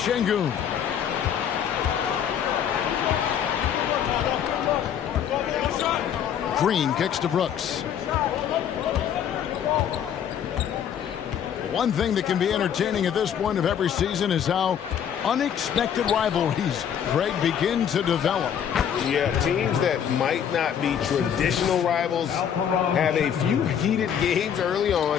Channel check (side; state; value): right; quieter; 8.8 dB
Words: Green kicks to Brooks. One thing that can be entertaining at this point of every season is how unexpected rivalries, Greg, begin to develop. Yeah, teams that might not be traditional rivals have a few heated games early